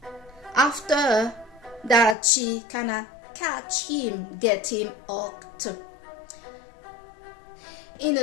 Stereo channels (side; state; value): right; drops out; at 2.1 s